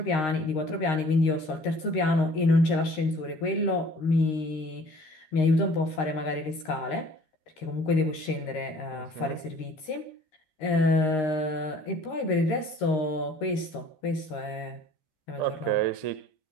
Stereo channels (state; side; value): late; right; 13 ms